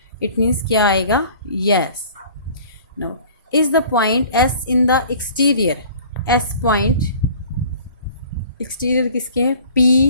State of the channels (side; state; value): both; inverted; correlation -0.48